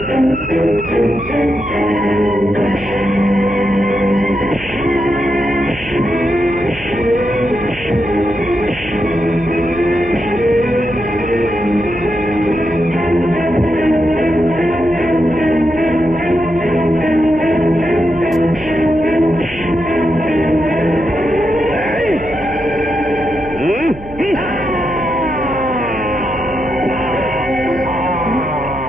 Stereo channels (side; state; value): right; noise; hum, 16 dB below the sound